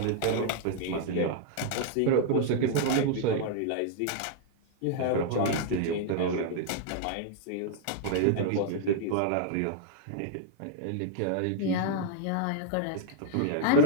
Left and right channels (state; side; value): different; both; correlation -0.01